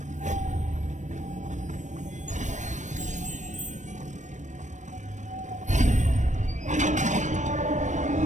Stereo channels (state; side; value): late; left; 0.35 ms